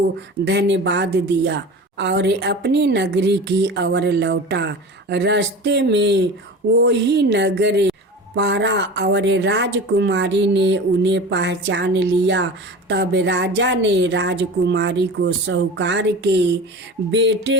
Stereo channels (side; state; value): both; normal; correlation 0.33